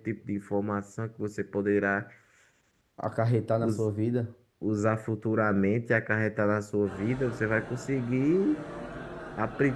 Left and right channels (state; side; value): identical; both; correlation 1.00